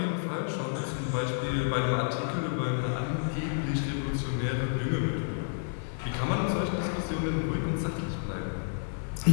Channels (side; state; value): right; silent; digital silence